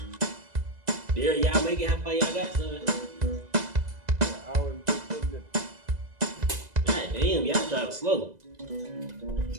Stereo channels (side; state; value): left; late; 2.0 ms